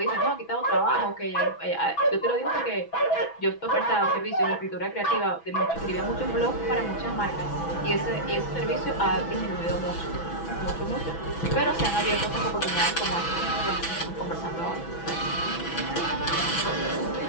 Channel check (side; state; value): right; late; 6.1 ms